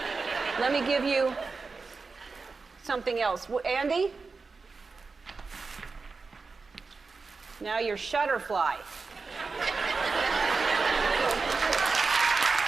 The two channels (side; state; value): left; quieter; 4.4 dB